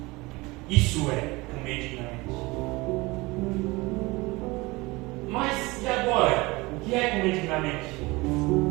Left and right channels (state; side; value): quieter; left; 22.9 dB